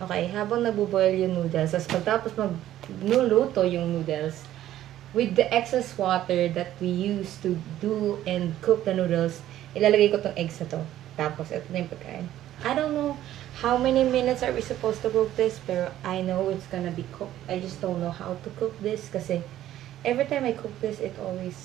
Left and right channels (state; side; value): quieter; left; 12.9 dB